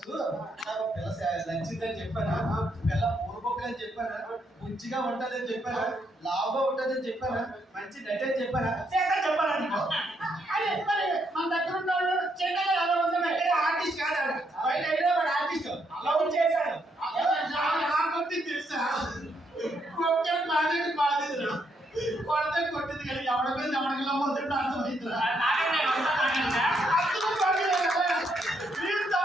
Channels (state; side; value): normal; both; correlation 0.76